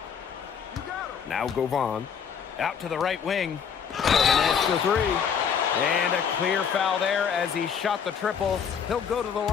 Now Govan. Out to the right wing. An extra three. And a clear foul there as he shot the triple. He'll go to the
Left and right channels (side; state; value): right; quieter; 7.2 dB